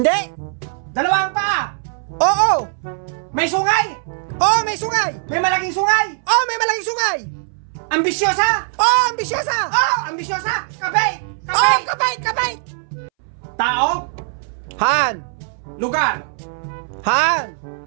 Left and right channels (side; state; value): left; silent; 64 dB below the other